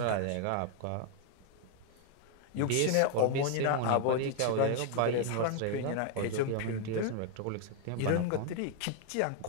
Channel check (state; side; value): different; both; correlation 0.00